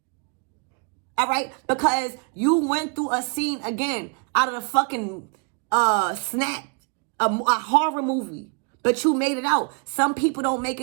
All right? Because you went through a scene again out of the fucking snap, a horror movie. But you made it out. Some people don't make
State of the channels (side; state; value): left; quieter; 36.5 dB